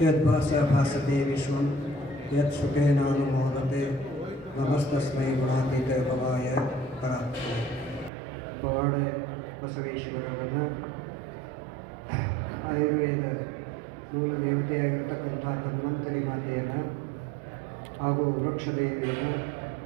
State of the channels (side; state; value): left; drops out; at 8.1 s